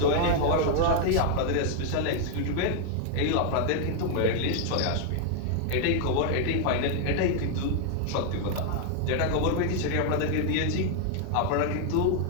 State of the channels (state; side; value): different; both; correlation 0.00